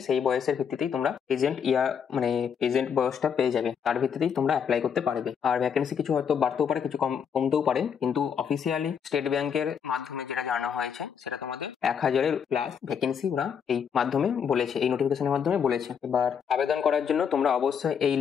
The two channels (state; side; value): quieter; right; 7.3 dB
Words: সেই বয়সের ভিত্তিতেই তোমরা প্রেজেন্ট বয়সটা পেয়ে যাবে। তার ভিত্তিতেই তোমরা অ্যাপ্লাই করতে পারবে। আর ভ্যাকেন্সি কিছু হয়তো বাড়তেও পারে, কিছু কমতেও পারে, কিন্তু অফিসিয়ালি স্টেট ব্যাংকের মাধ্যমে যেটা জানানো হয়েছে সেটা তোমাদের 1000-এর প্লাস ভ্যাকেন্সি ওরা এই মাধ্যমে বলেছে, এই নোটিফিকেশনের মাধ্যমে বলেছে। এবার আবেদন করার জন্য তোমরা অবশ্যই এই